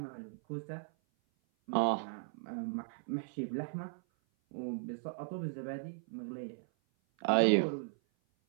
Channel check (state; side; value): silent; left; 53 dB below the other